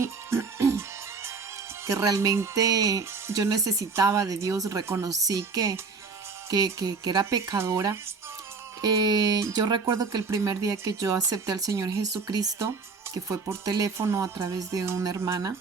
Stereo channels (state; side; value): quieter; left; 4.7 dB